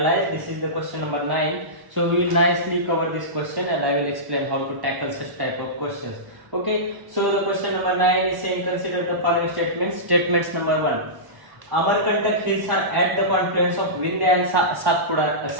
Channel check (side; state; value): left; late; 1.0 ms